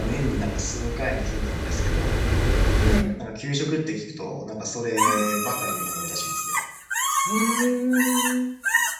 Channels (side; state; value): both; identical; correlation 1.00